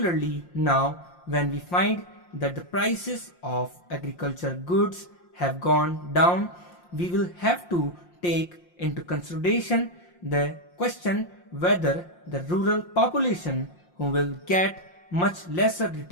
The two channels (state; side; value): late; right; 5.7 ms